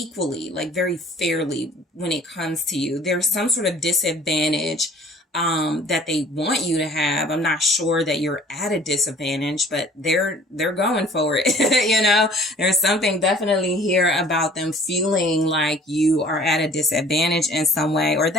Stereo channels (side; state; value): both; normal; correlation 0.51